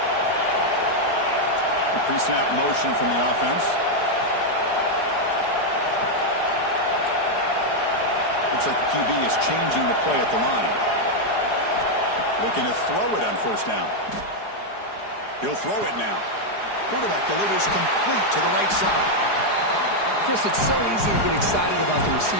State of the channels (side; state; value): right; late; 4.8 ms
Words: Pre-snap motion from the offense. Looks like the QB is changing the play at the line. Looking to throw it on first down. He'll throw it now. Quarterback delivers complete to the right side. Chris, it's so easy to get excited about the